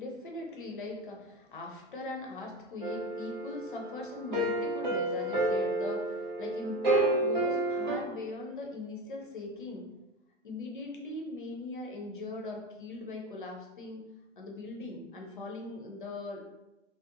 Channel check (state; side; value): normal; both; correlation 0.25